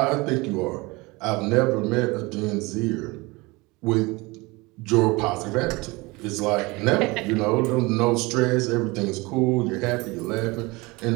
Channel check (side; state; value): left; quieter; 24.0 dB